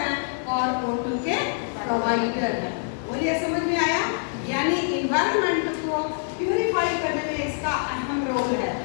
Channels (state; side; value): silent; right; 62 dB below the other